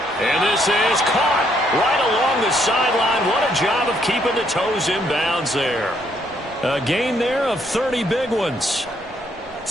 And this is caught right along the sideline. What a job of keeping the toes in bounds there. A gain there of 30 big ones.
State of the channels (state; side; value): normal; both; correlation 0.71